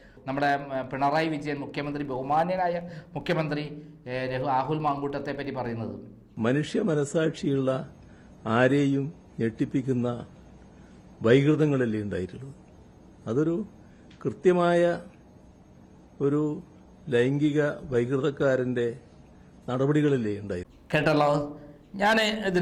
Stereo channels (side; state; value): both; identical; correlation 1.00